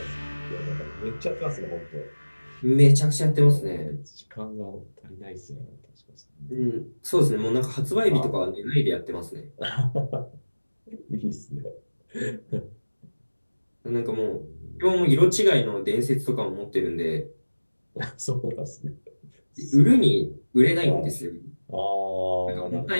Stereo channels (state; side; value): inverted; both; correlation -1.00